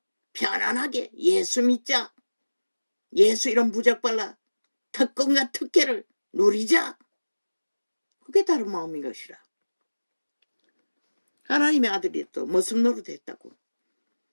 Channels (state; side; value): inverted; both; correlation -1.00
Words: 편안하게 예수 믿자. 예수 이런 부적발라 특권과 특혜를 누리자. 그게 다른 마음인 것이라. 하나님의 아들이 또 무슨 노릇 했다고?